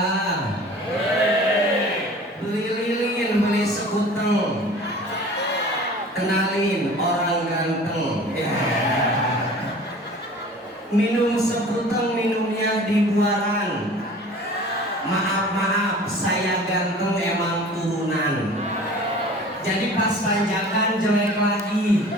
beli lilin, beli sekuteng, kenalin orang ganteng. Minum sekuteng, minumnya di buaran. Maaf, saya ganteng emang turunan. Jadi pas panjangan jelek lagi,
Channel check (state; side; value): normal; both; correlation 0.44